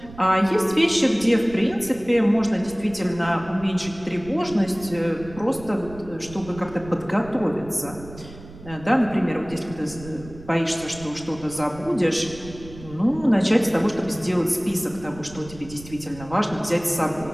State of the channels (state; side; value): noise; right; rumble, 17 dB below the sound